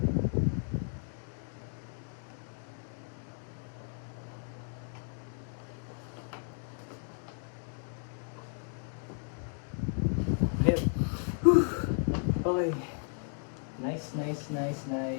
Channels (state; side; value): silent; right; 55 dB below the other